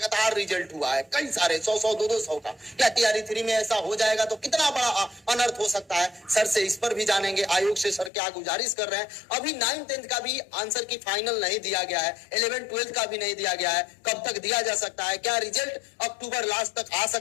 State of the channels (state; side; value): drops out; right; at 8.1 s